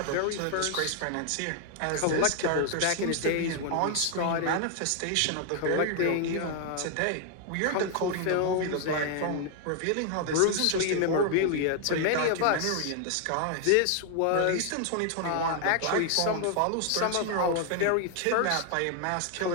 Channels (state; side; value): different; both; correlation 0.00